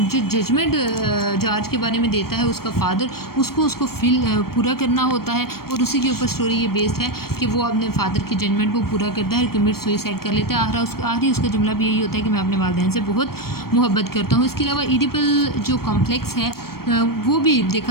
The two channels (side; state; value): right; late; 0.94 ms